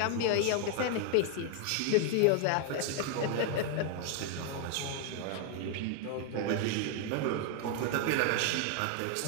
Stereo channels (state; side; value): different; both; correlation 0.00